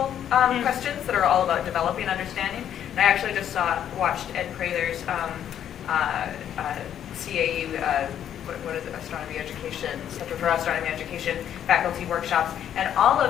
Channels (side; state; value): right; quieter; 10.0 dB